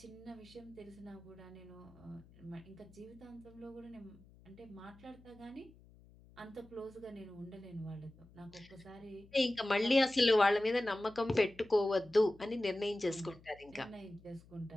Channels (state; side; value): noise; left; hum, 24 dB below the sound